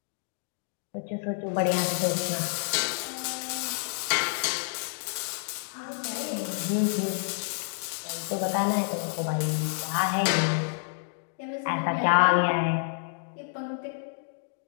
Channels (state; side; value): silent; right; digital silence